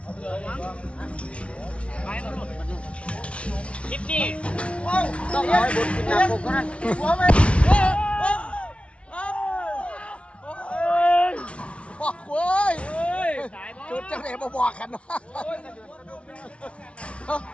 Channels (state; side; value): late; right; 0.061 ms